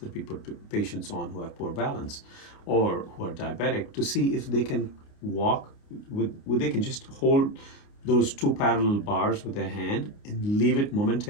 we put patients on who have poor balance or who are diabetic to see if they can walk they can just hold those 2 parallel bars with their hand and leave it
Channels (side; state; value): right; late; 29 ms